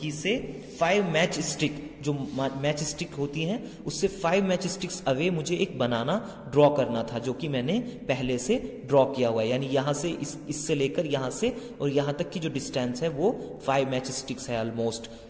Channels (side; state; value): both; identical; correlation 1.00